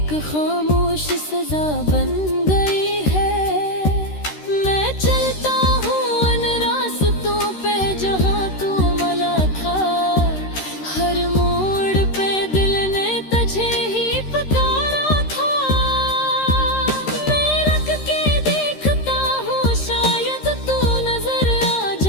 खामोश सजा बन गई है। मैं चलता हूँ उन रास्तों पे जहाँ तू मला था, हर मोड़ पे दिल ने तुझे ही पुकारा था। मैं रख के देखता हूँ शायद तू नजर आ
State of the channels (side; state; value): right; late; 13 ms